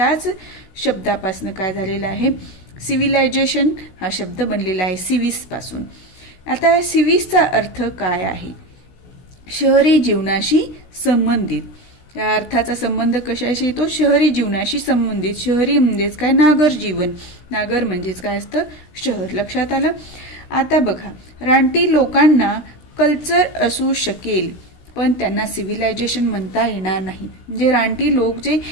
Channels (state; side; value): late; right; 16 ms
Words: शब्दापासून काय झालेलं आहे, सिव्हिलायझेशन हा शब्द बनलेला आहे सिव्हिस पासून. आता सिव्हिसचा अर्थ काय आहे, शहरी जीवनाशी संबंधित. या अर्थाचा संबंध कशाशी येतो, शहरी जीवनाशी संबंधित. शहरी म्हणजेच काय, नागर जीवन. नागर म्हणजेच काय असतं, शहर. लक्षात आलं? आता बघा, रानटी लोकांना कल्चर असू शकेल पण त्यांना सिव्हिलायझेशन म्हणता येणार नाही. म्हणजे रानटी लोक जे,